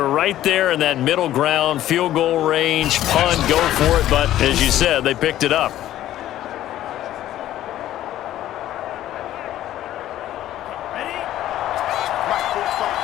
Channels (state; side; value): quieter; right; 13.1 dB